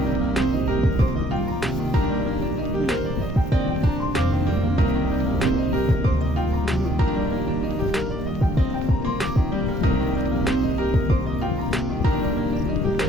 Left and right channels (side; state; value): both; normal; correlation 0.62